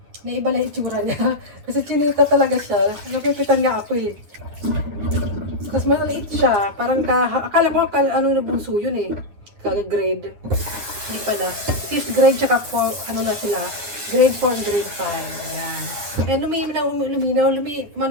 Naiba lang itsura niya. Kasi chinita talaga siya. Nakikitan nga ako eh. Tapos maliit siya. Parang akala ko na bunso yun eh. Grade. Hindi pala. 5th grade tsaka na sila. Grade 4, grade 5. Ayan. Ayan,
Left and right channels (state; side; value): late; left; 9.9 ms